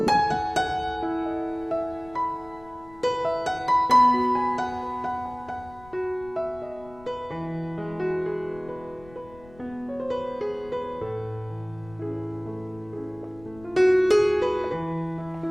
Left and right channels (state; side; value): noise; left; rumble, 22 dB below the sound